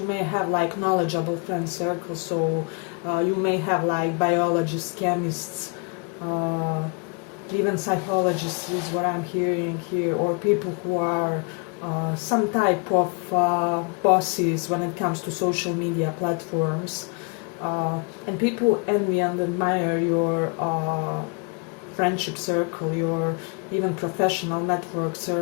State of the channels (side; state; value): right; quieter; 34.9 dB